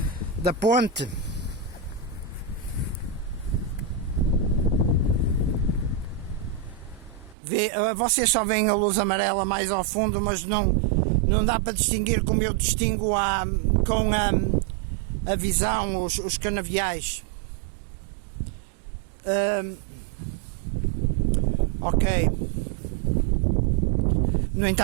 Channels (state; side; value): drops out; left; at 7.4 s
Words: ponte. Vocês só veem a luz amarela mais ao fundo, mas não dá para distinguir como eu distingo com a visão, os canaviais. Ok. No